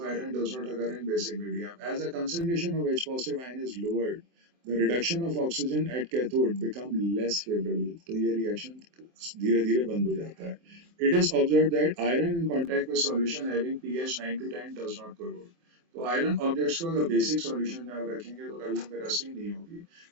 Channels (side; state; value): left; late; 23 ms